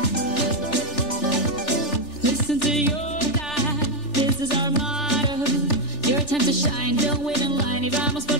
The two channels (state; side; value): late; right; 3.4 ms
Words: Listen to your dad, this is our motto. Your time to shine, don't wait in line y vamos por